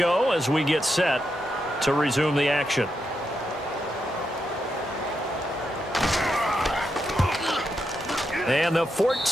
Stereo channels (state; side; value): normal; both; correlation 0.84